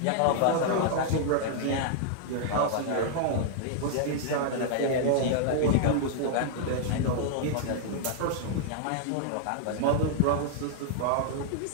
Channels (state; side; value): different; both; correlation -0.01